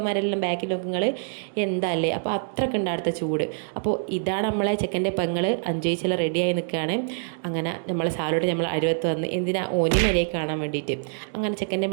ബാക്കിൽ നോക്കുങ്ങൾ എന്തല്ലേ. അപ്പോൾ അത്രയ്ക്ക് ഉണ്ട് അടുത്ത ചൂട്. അപ്പോൾ ഇതാണ് നമ്മളെ ചെക്കൻ്റെ പെങ്ങൾ അഞ്ചേച്ചിൽ റെഡിയായി നിൽക്കുകയാണ്. അങ്ങനെ നമ്മളെ സാലോട്ട് നമ്മൾ അരുവത്ത് വന്ന് എന്തിനാ ഓനി മരിയെ കാണാൻ വേണ്ടിയിട്ട്. അങ്ങനെ ചെക്കൻ്റെ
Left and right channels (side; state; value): left; silent; digital silence